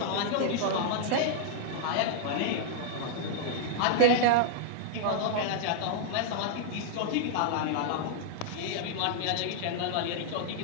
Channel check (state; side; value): different; both; correlation -0.01